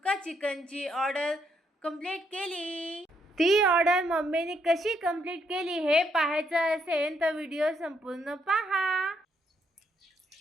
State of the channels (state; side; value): normal; both; correlation 0.74